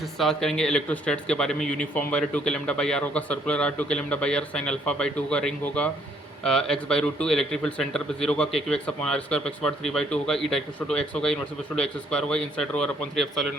करेंगे इलेक्ट्रोस्टैट्स के बारे में। Uniform wire 2 k lambda by r होगा, circular r 2 k lambda by r, sine alpha by 2 होगा, रिंग होगा x by root 2, electric field centre पे 0 होगा, k q x upon r square x bar 3/2 होगा, ई डाइक्रोस्टो to x होगा, inversely to x square होगा, inside rho r upon 3 epsilon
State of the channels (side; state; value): both; normal; correlation 0.66